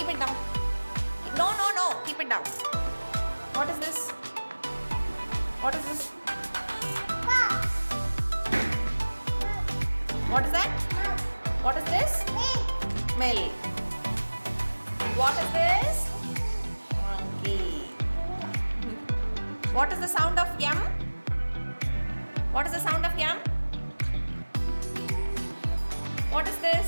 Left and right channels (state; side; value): inverted; both; correlation -1.00